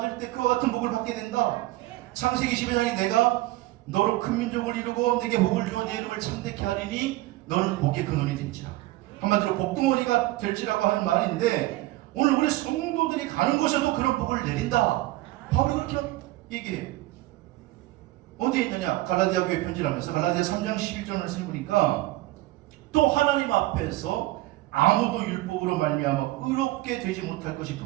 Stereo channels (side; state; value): left; quieter; 18.0 dB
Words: 때 그와 같은 복을 받게 된다. 창세기 12장에 내가 너로 큰 민족을 이루고 내게 복을 주어 내 이름을 참되게 하리니 너는 복의 근원이 될지라. 한마디로 복덩어리가 될지라고 하는 말인데, 오늘 우리 성도들이 가는 곳에도 그런 복을 내린다. 바울이 그렇게 얘기해요. 어디에 있느냐? 갈라디아 교회 편지를 하면서 갈라디아 3장 11절 말씀을 보니까 또 하나님 앞에서 아무도 율법으로 말미암아 의롭게 되지 못할 것이